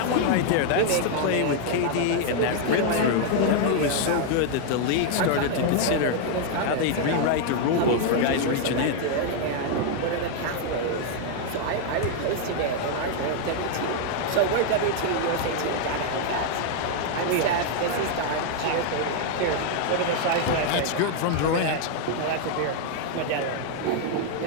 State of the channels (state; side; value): different; both; correlation 0.00